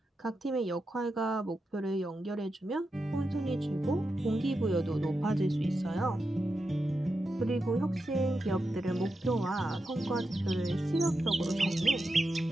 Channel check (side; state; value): both; normal; correlation 0.88